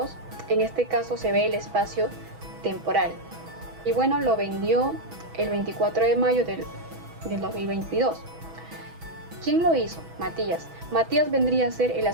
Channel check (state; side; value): late; left; 6.2 ms